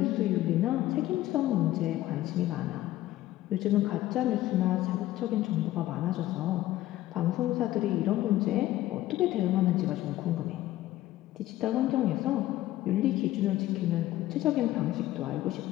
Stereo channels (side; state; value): right; quieter; 15.0 dB